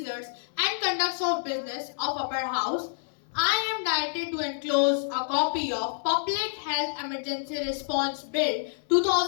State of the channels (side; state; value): right; silent; digital silence